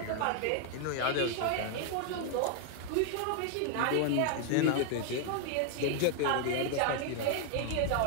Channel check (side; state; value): both; different; correlation 0.00